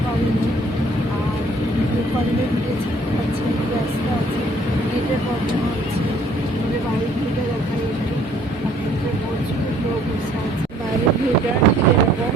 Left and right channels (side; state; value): both; normal; correlation 0.60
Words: পারিনি, আর কলেজে ভিডিও ছাড়তে পারছি না, ব্যস্ত আছে, নেটের প্রবলেম হচ্ছে। আমাদের বাড়ির ভিড়টা দেখাই একটু, আপনাদের প্রচুর লোক বসে আছে। বাইরের ভিড়টা এরকম,